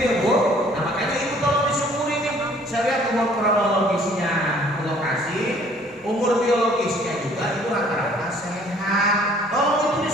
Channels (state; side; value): normal; both; correlation 0.57